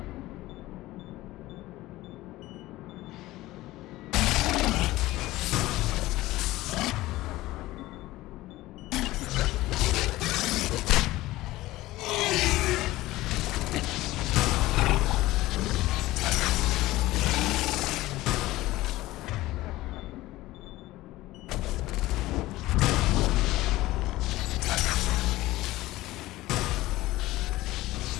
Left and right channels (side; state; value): right; quieter; 17.6 dB